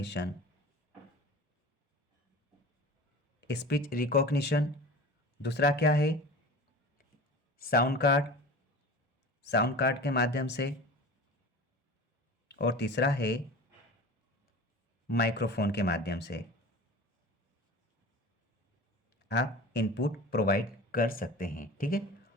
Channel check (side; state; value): both; normal; correlation 0.37